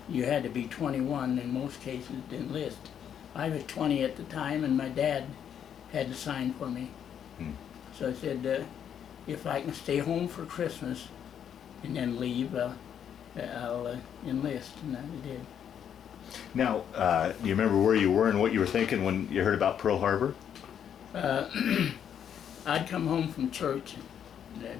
you had to be 21 in most cases to enlist. I was 20 at the time, and my dad had to sign for me. So I said, if I can stay home for Christmas and then leave, I'll enlist, and I did. Now, do you remember where you were and what you were thinking when you heard about Pearl Harbor? I'd come home from church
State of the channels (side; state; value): right; quieter; 8.8 dB